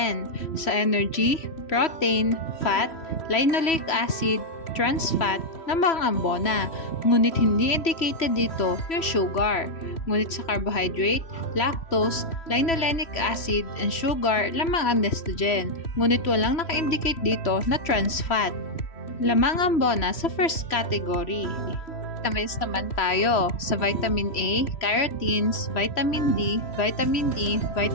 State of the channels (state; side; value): late; right; 3.1 ms